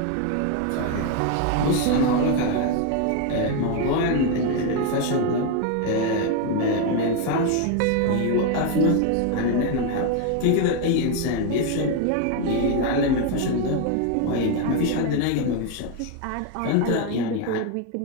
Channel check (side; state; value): both; different; correlation 0.01